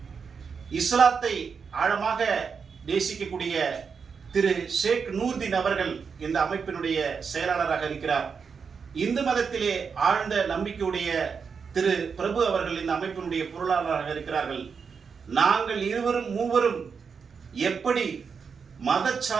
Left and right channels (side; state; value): left; quieter; 5.9 dB